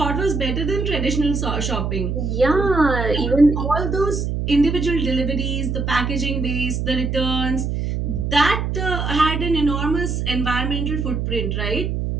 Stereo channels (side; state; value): right; noise; hum, 1 dB below the sound